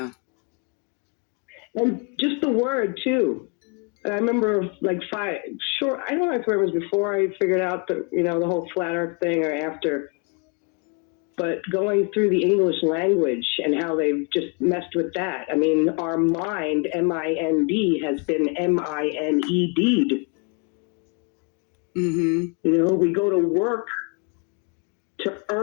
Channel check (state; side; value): quieter; right; 34.4 dB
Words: And just the word, too. I remember, like, I don't know if it was before I figured out the whole flat earth thing or after, but going through the English language and how they've just messed with that. I mean, our mind, M-I-N-D, has been M-I-N-E-D'd. Mm-hmm. You know, we go to work to